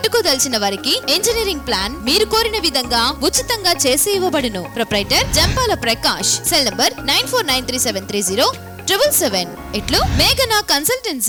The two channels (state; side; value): identical; both; correlation 1.00